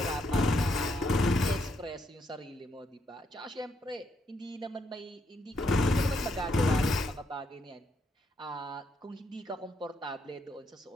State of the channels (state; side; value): normal; both; correlation 0.76